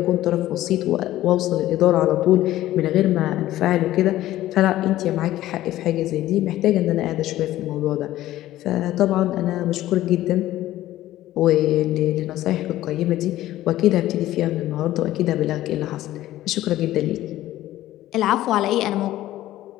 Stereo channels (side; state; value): right; quieter; 14.7 dB